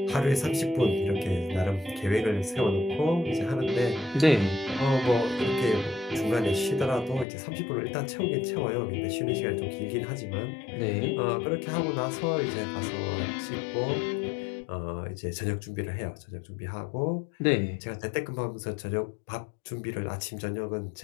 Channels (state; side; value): drops out; right; at 7.2 s